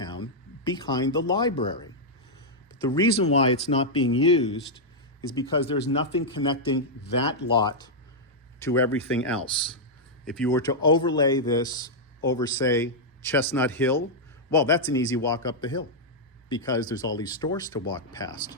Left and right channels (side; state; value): both; normal; correlation -0.05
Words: behind the library. But the reason why it's not being used is because there's nothing connecting that lot to everything else. If you were to overlay this over, say, Chestnut Hill, well, that's an easy walk up the hill because there's all these stores to walk past.